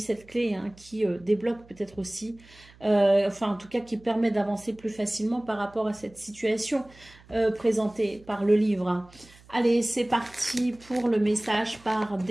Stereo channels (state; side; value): noise; right; hum, 25 dB below the sound